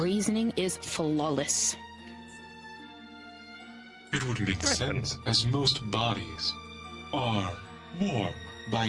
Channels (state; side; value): identical; both; correlation 1.00